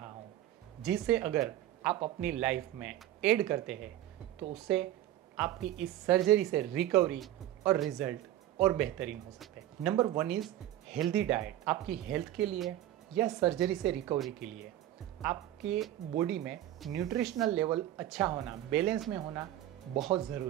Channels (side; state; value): left; quieter; 13.1 dB